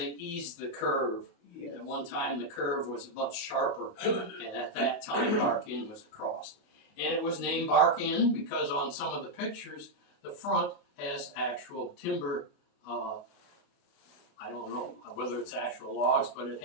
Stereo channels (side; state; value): right; late; 29 ms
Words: eased the curve. Yes. At one time the curve was much sharper, and at that time Bark Inn was across. And it was named Bark Inn because on some of the pictures the front has actual timber. I don't know whether it's actual logs, but it